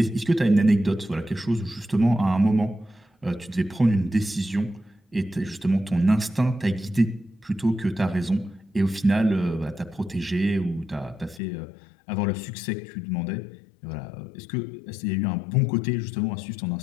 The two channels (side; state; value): right; drops out; at 11.4 s